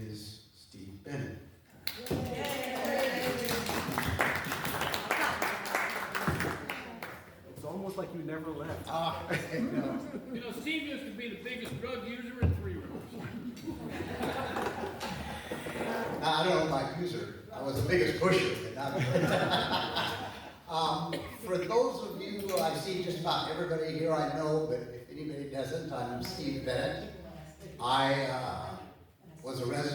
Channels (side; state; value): both; identical; correlation 1.00